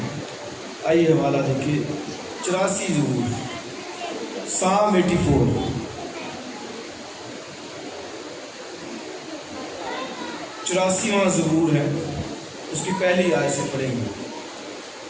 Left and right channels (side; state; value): both; identical; correlation 1.00